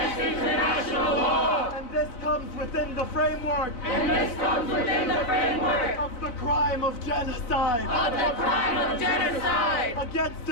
international law. And this comes within the framework And this comes within the framework of the crime of genocide. of the crime of genocide Against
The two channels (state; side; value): late; right; 4.1 ms